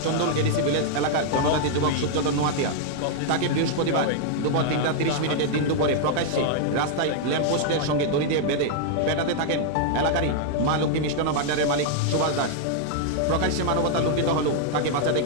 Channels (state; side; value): different; both; correlation -0.01